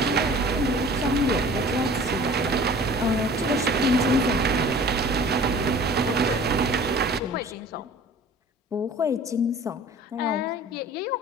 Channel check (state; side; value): normal; both; correlation 0.46